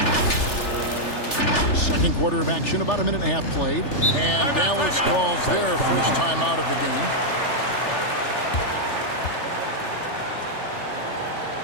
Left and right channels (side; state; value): right; late; 3.4 ms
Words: Second quarter of action, about a minute and a half played. And Dallas calls their first time out of the game.